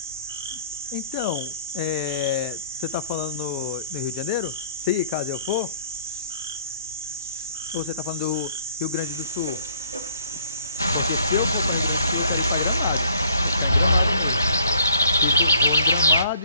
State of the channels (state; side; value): inverted; both; correlation -0.60